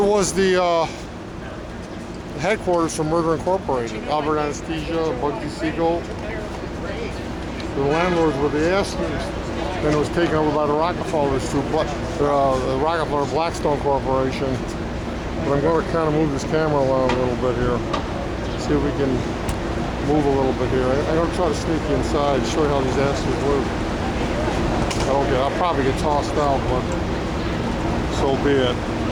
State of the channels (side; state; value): both; identical; correlation 1.00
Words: was the headquarters for Murder Incorporated. Albert Anesthesia, Bugsy Siegel. The landlords were the Astors. Then it was taken over by the Rockefellers through the Rockefeller Blackstone Corporation. But I'm going to kind of move this camera around a little bit here. See if we can move a little bit here. I'm going to try to sneak you inside, show you how these Astors live. I'll probably get tossed out, but so be it.